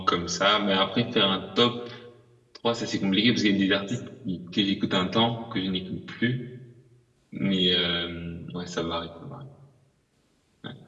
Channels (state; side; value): identical; both; correlation 1.00